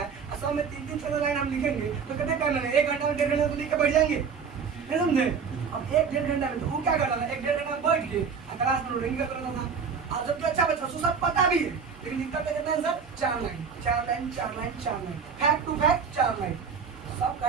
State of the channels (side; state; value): left; quieter; 6.1 dB